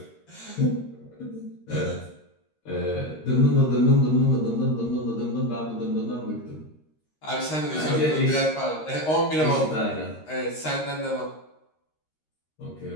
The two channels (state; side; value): late; right; 13 ms